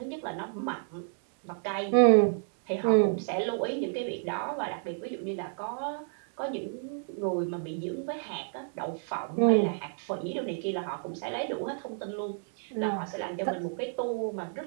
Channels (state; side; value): silent; left; 58 dB below the other